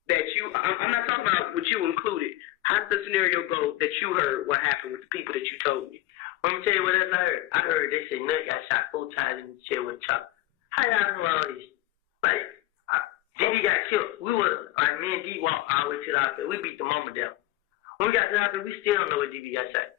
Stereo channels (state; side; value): quieter; right; 16.0 dB